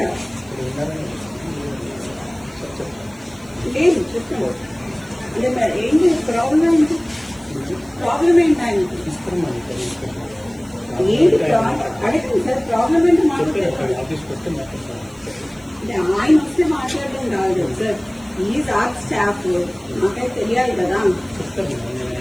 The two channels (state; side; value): noise; right; hiss, 26 dB below the sound